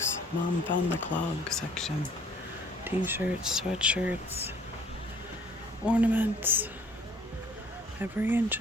Mom found the clog section. T-shirts, sweatshirts, ornaments. Every inch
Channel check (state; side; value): normal; both; correlation 0.57